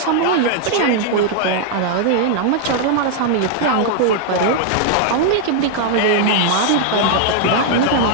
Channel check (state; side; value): different; both; correlation 0.00